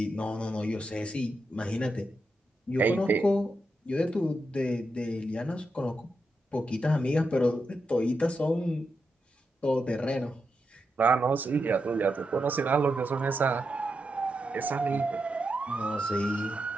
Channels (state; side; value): normal; both; correlation 0.86